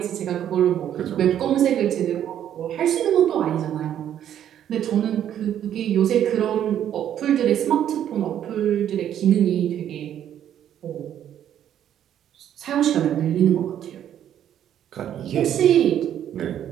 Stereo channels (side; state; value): left; quieter; 10.4 dB